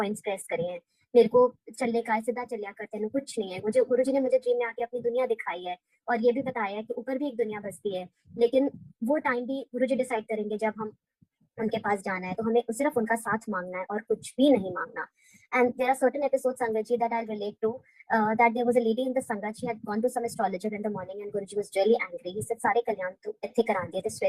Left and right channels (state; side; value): identical; both; correlation 1.00